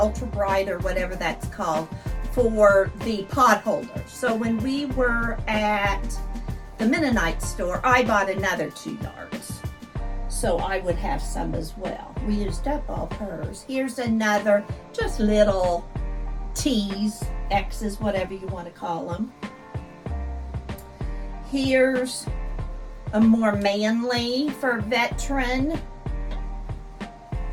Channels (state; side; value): identical; both; correlation 1.00